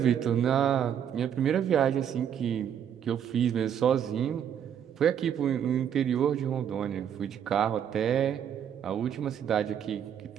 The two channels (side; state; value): left; quieter; 8.9 dB